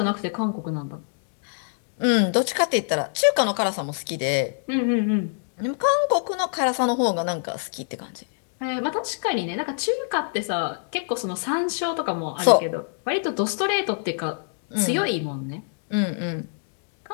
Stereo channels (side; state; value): right; silent; digital silence